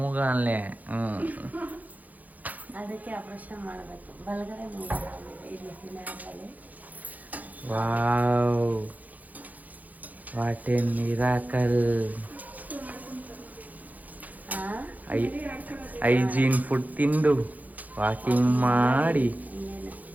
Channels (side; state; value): left; late; 0.080 ms